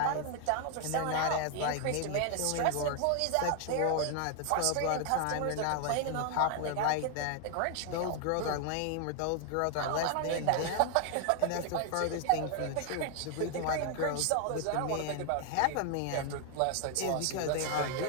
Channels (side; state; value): both; different; correlation 0.00